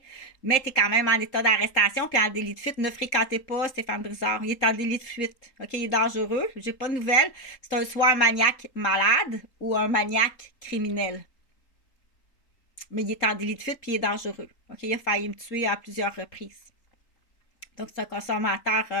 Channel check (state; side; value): late; right; 3.8 ms